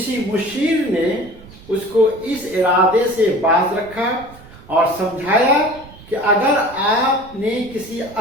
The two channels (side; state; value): right; noise; rumble, 21 dB below the sound